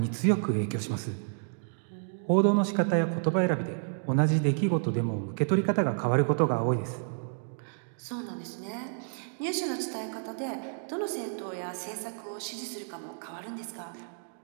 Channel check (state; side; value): silent; left; digital silence